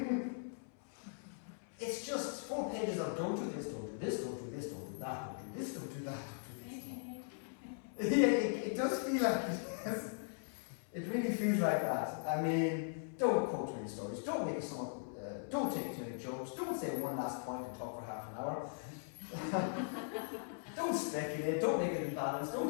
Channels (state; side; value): silent; right; 51 dB below the other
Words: it's just 4 pages of don't do this, don't do this, don't do this, don't do that, don't do this, don't do that, don't do this. Yeah, it does feel like it. It really feels like that. I mean, don't quote any stories, don't make a song, don't take too many jokes, don't say one last point and talk for half an hour. Don't speculate, don't make any balance, don't